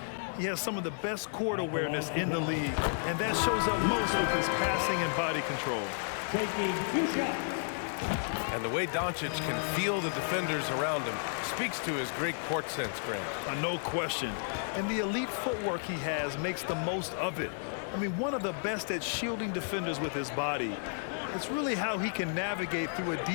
He has some of the best court awareness in the league, and that shows up most with his passing and body control. Taking 2 shots. And the way Doncic can feel the defenders around him speaks to his great court sense, Grant. No question. And the elite footwork he has makes the most of it. I mean, one of the best at shielding defenders with his body. It's really how he can navigate through a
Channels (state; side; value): silent; right; digital silence